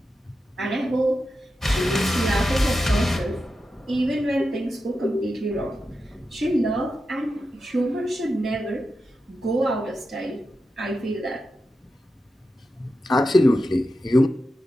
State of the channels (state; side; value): normal; both; correlation 0.90